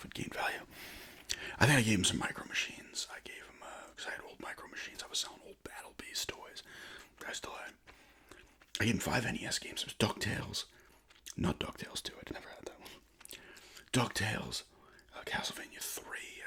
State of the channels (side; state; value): both; identical; correlation 1.00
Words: would gain value. I think I gave him some micro machines. I gave him, because I had old micro machines. I was selling old Battle Beast toys. I still had. I gave him 5 NES games. It was DuckTales. Not DuckTales 2. I never had that one. DuckTales. Castlevania 3.